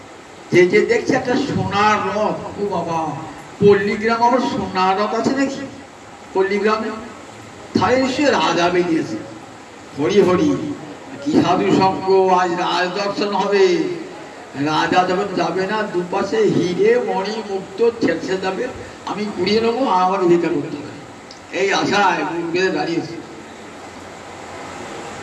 যে যে দেখছে একটা সোনার রথ। ও বাবা, পল্লীগ্রাম আবার সোনার রথ আছে নাকি? পল্লীগ্রামে তাহলে নিশ্চয়ই রাজা বেরিয়েছে। হরি হরি, কি সাধু সঙ্গ, আজ রাজ দর্শন হবে। রাজা যখন যাবে না, দুপাশে হিরে মণি মুক্ত ছেড়ে যাবে, আমি কুড়িয়ে নেবো, আমার ভিক্ষা করতে হবে, এই আশায় বেঁধে দাঁড়িয়েছে।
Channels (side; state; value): both; identical; correlation 1.00